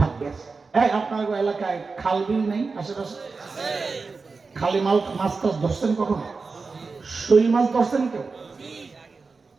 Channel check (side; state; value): left; quieter; 4.4 dB